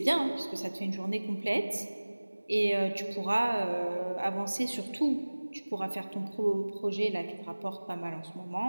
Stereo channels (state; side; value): inverted; both; correlation -1.00